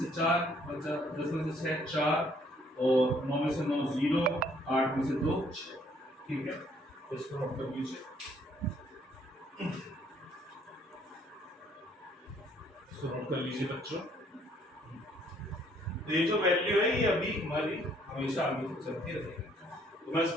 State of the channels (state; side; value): normal; both; correlation 0.64